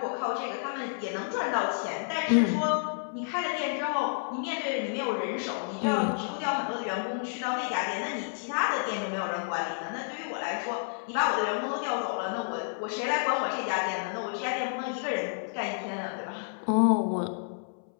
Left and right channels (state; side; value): silent; right; 58 dB below the other